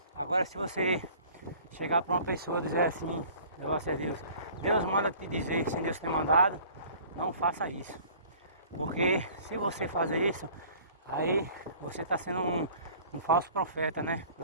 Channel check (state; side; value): inverted; both; correlation -0.49